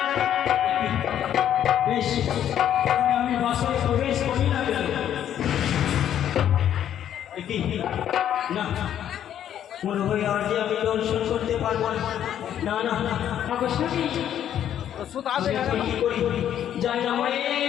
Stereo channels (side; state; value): right; quieter; 10.3 dB